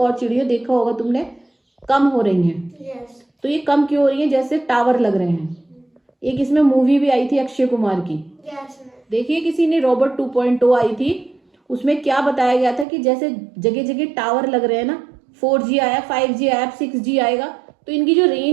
चिड़िया, देखा होगा तुमने, कम हो रही हैं। तो ये कम क्यों हो रही है, जैसे टावर लग रहे हैं। एक इसमें मूवी भी आई थी अक्षय कुमार की, देखिए किसी ने, रोबोट 2.0 आई थी, उसमें क्या बताया गया था कि जैसे जगह जगह टावर लग रहे हैं ना, 4G आया, 5G आया, 6G आएगा, तो इनकी जो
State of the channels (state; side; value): drops out; left; at 12.9 s